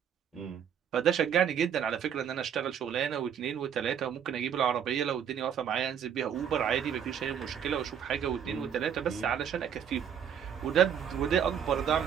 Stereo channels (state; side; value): quieter; left; 8.4 dB